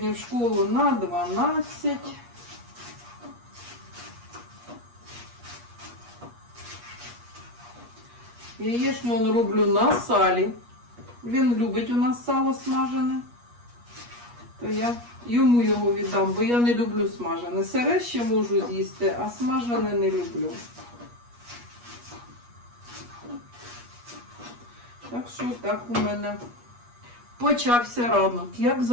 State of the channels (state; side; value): late; left; 8.4 ms